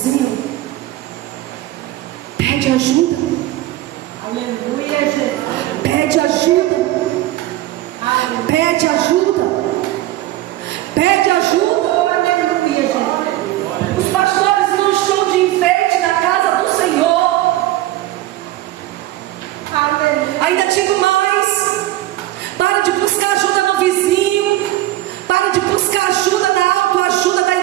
pede ajuda. Aleluia, Jesus. Pede ajuda. Pede ajuda. Pede ajuda. Aleluia, Jesus. Os pastores não estão de enfeite na casa do Senhor. Aleluia. Ainda digo mais: para de buscar ajuda no vizinho. Para de buscar ajuda na autoajuda da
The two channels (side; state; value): left; quieter; 15.6 dB